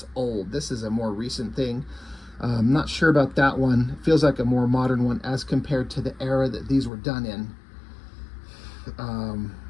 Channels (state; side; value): drops out; right; at 6.9 s